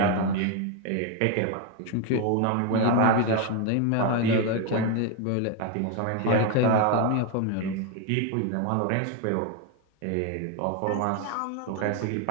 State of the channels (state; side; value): different; both; correlation 0.01